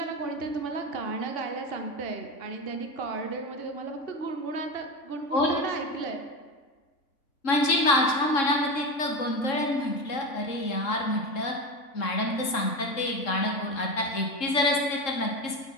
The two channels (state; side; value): late; right; 3.7 ms